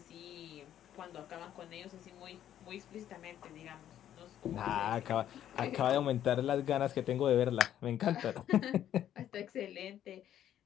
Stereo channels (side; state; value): right; quieter; 11.0 dB